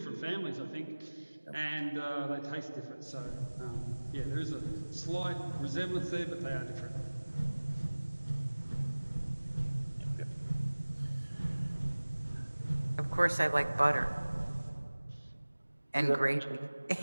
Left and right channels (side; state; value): both; inverted; correlation -1.00